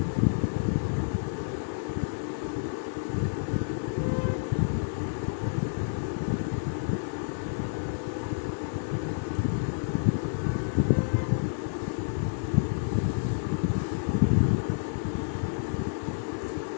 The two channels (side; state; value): right; silent; digital silence